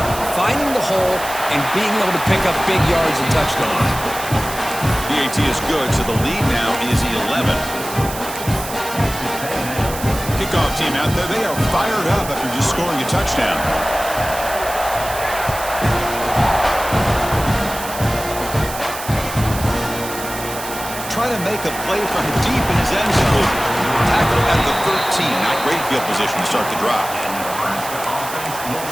finding the hole, and being able to pick up big yards and touchdowns. The AT is good, so the lead now is 11. Kickoff team out there, they are fired up after just scoring a touchdown. Try to make a play from deep in his end zone. Tackle at the 13. Not great field position to start the drive.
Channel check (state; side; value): noise; right; hiss, 10 dB below the sound